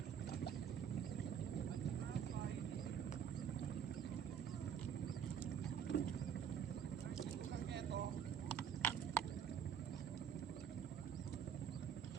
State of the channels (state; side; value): quieter; left; 8.1 dB